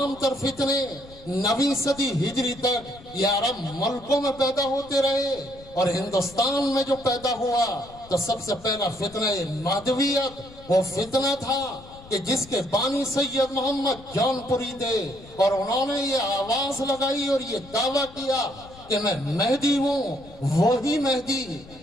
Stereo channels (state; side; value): noise; left; rumble, 20 dB below the sound